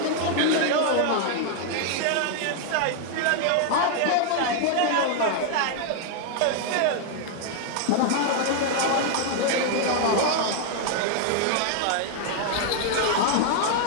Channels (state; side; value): different; both; correlation 0.00